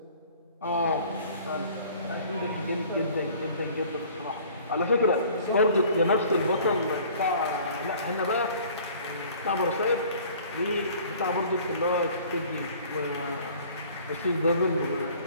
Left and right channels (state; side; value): inverted; both; correlation -0.51